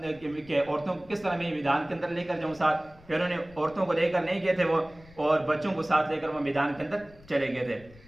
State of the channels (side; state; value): left; noise; rumble, 23 dB below the sound